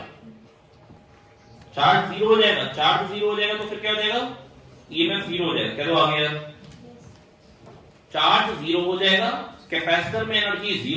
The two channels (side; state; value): both; identical; correlation 1.00